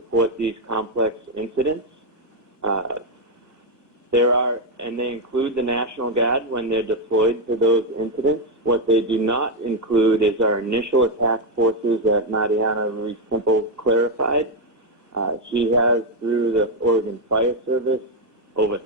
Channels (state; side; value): normal; both; correlation 0.04